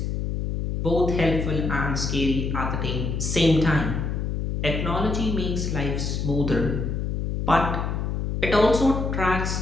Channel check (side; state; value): left; noise; hum, 2 dB below the sound